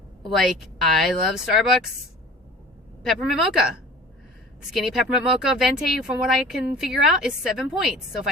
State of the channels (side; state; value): both; normal; correlation 0.44